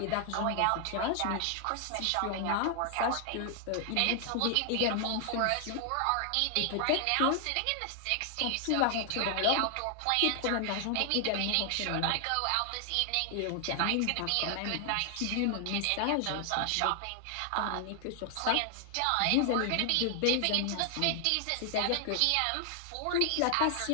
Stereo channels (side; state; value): both; different; correlation 0.00